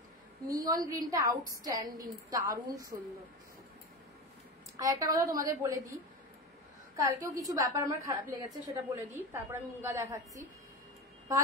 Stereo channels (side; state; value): both; normal; correlation 0.24